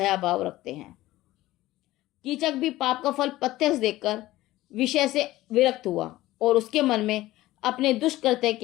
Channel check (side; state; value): right; quieter; 16.7 dB